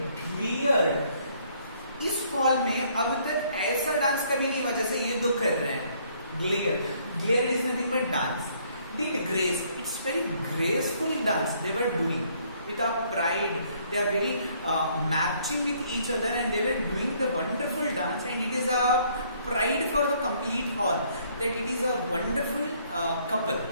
clear. इस hall में अब तक ऐसा dance कभी नहीं हुआ जैसे ये दो कर रहे हैं. Glare is nothing but dance. Did grace. It's very graceful dance they were doing. With a pride, they are very matching with each other and they were doing the wonderful dance, and it is a pride for the complete hall that it is a wonderful couple.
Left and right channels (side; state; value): both; inverted; correlation -0.65